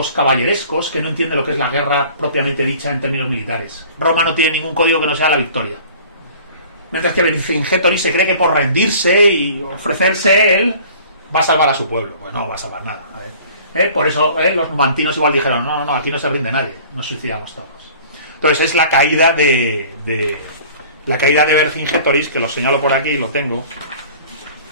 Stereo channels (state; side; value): inverted; both; correlation -0.47